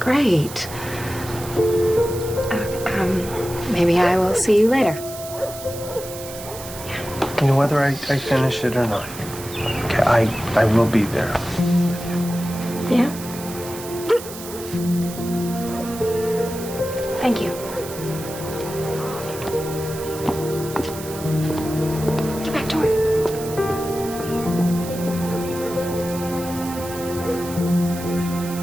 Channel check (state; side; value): noise; right; hiss, 13 dB below the sound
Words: Maybe I will see you later. Whether I finish it or not. Okay, I will be there. Yeah? Thank you. Get back to it.